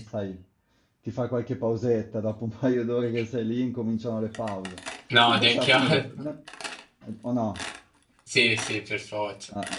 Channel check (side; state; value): both; identical; correlation 1.00